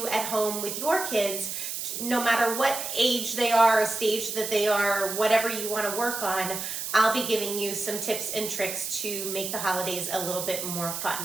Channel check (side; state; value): right; noise; hiss, 5 dB below the sound